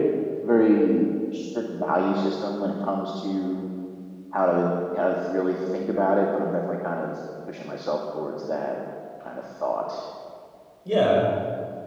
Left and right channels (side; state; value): both; identical; correlation 1.00